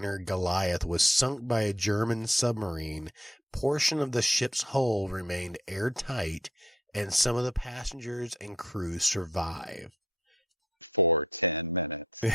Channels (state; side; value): normal; both; correlation 0.65